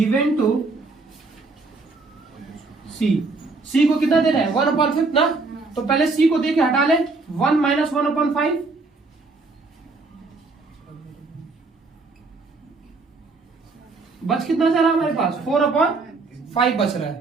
टू सी, सी को कितना दे रहा है, 1/5 ना। तो पहले सी को दे के हटा ले, 1 - 1/5, बच कितना जा रहा है हमारे पास, 4/5 बच रहा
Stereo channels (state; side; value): quieter; left; 3.7 dB